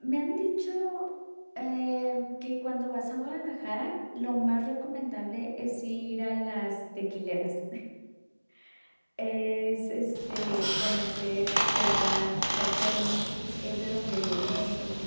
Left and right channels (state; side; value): inverted; both; correlation -1.00